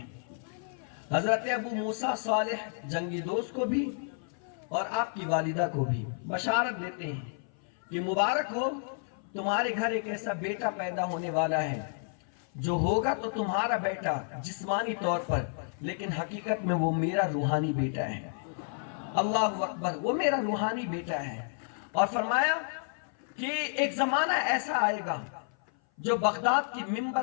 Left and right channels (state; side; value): silent; right; 56 dB below the other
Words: حضرت ابو موسیٰ صالح جنگی دوست کو بھی اور آپ کی والدہ کو بھی بشارت دیتے ہیں کہ مبارک ہو، تمہارے گھر ایک ایسا بیٹا پیدا ہونے والا ہے جو ہوگا تو تمہارا بیٹا جسمانی طور پر، لیکن حقیقت میں وہ میرا روحانی بیٹا ہے۔ اللہ اکبر، وہ میرا روحانی بیٹا ہے۔ اور فرمایا کہ ایک زمانہ ایسا آئے گا جو بغداد کی منبر